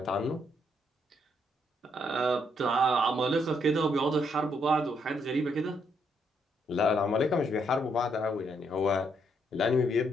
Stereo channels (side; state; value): both; normal; correlation 0.74